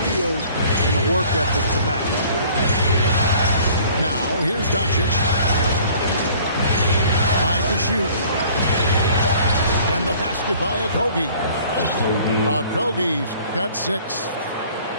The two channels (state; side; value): inverted; both; correlation -0.52